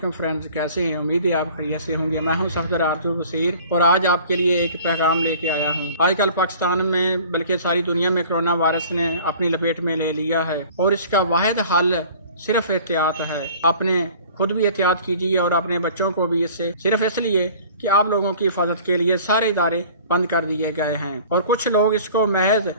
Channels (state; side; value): inverted; both; correlation -0.48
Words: فرینڈز، کیسے ہیں؟ امید ہے آپ خیریت سے ہوں گے۔ میں ہوں صفدر عبد البصیر اور آج آپ کے لیے ایک پیغام لے کے آیا ہوں۔ آج کل پاکستان میں بلکہ ساری دنیا میں کرونا وائرس نے اپنی لپیٹ میں لے لیا ہے اور اس کا واحد حل صرف احتیاط ہے۔ اپنے خود بھی احتیاط کیجیے اور اپنے بچوں کو بھی، اس سے صرف اس لیے کہ آپ لوگوں کی حفاظت کے لیے سارے ادارے بند کر دیے گئے ہیں اور کچھ لوگ اس کو محض